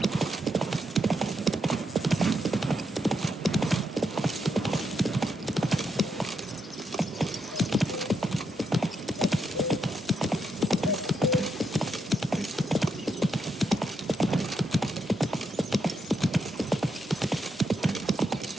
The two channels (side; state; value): both; normal; correlation 0.81